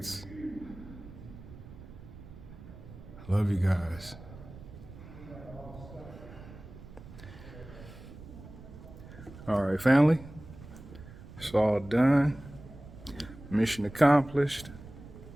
Love you guys. All right, family. It's all done. Mission accomplished.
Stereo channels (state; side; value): noise; right; rumble, 16 dB below the sound